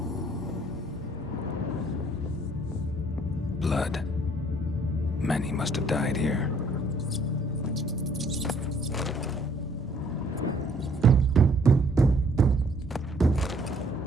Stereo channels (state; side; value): normal; both; correlation 0.62